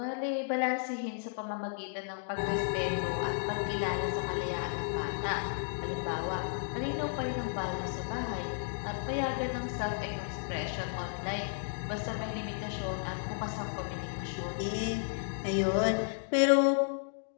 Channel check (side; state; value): right; silent; digital silence